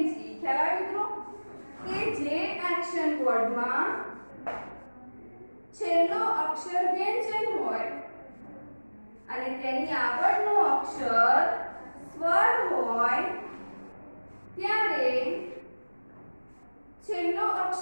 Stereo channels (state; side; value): inverted; both; correlation -1.00